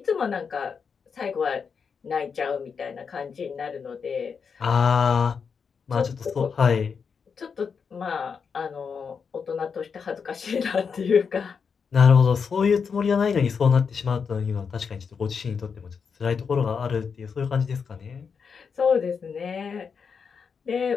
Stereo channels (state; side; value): quieter; right; 6.0 dB